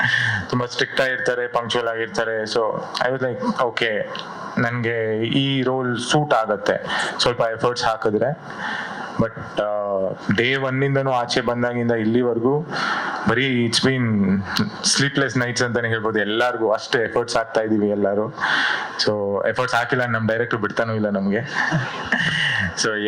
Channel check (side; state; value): both; identical; correlation 1.00